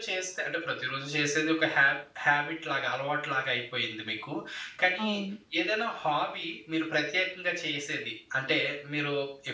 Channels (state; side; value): identical; both; correlation 1.00